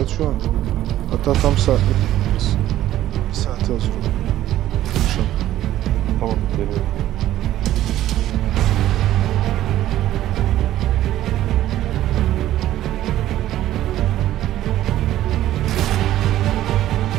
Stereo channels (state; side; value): quieter; left; 13.4 dB